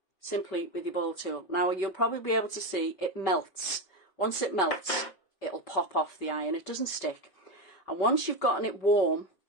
simply with your ball tool. Now you'll probably be able to see it melts. Once it melts, it'll pop off the iron. It doesn't stick. And once you've gotten it warm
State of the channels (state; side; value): late; right; 5.2 ms